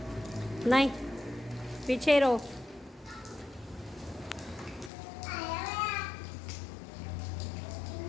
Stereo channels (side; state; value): right; drops out; at 4.9 s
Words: नहीं, पीछे ही रहो।